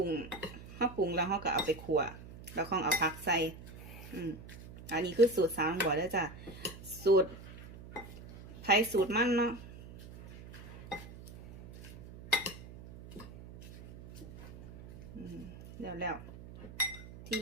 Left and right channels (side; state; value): right; noise; hum, 15 dB below the sound